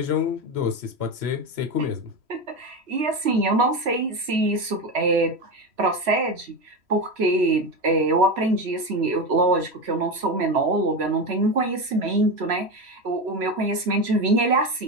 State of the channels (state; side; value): late; left; 3.1 ms